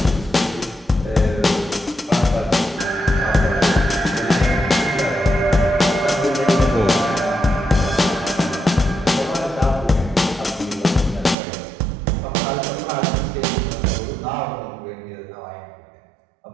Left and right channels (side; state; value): left; drops out; at 11.4 s